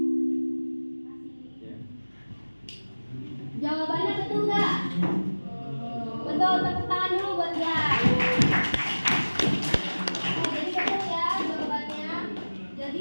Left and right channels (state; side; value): inverted; both; correlation -1.00